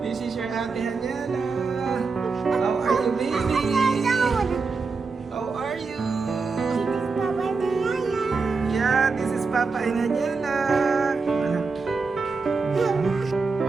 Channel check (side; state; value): left; quieter; 4.5 dB